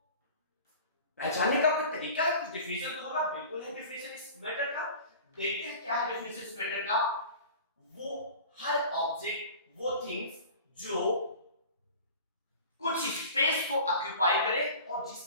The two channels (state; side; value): inverted; both; correlation -0.40